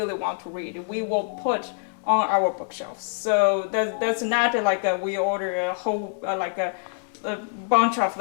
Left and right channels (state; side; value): silent; right; digital silence